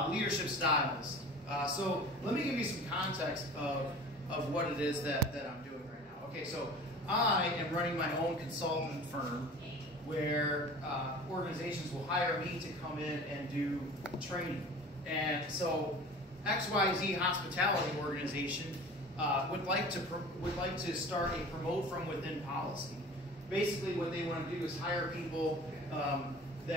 leadership styles. So let me give you some context of what it is that I'm doing right now. Okay, so I am running my own consultant firm where organizations will hire me to come in and do training. And so XYZ Hospitality Organization would like to start a promote from within policy. Basically what they want to do is hire people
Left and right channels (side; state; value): both; normal; correlation 0.41